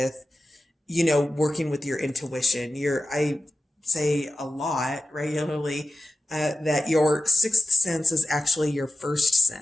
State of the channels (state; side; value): normal; both; correlation 0.93